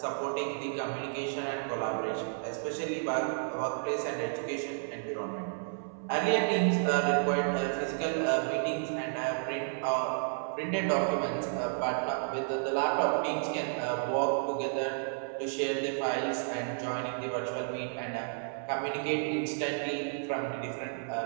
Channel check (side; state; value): left; silent; 56 dB below the other